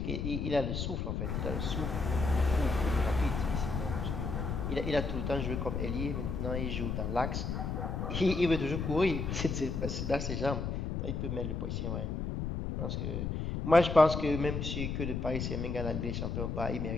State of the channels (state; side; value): noise; left; rumble, 2 dB below the sound